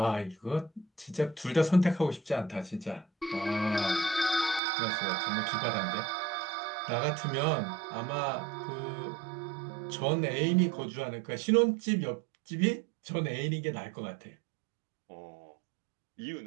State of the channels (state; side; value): drops out; left; at 4.6 s